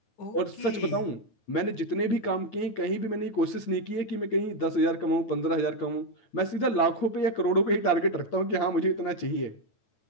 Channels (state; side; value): late; right; 9.2 ms